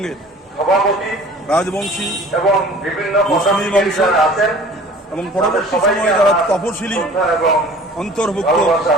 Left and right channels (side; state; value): both; normal; correlation 0.46